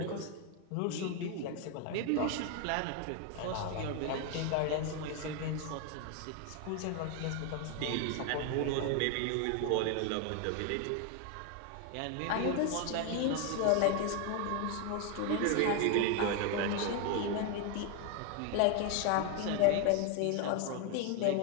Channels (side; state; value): both; different; correlation 0.01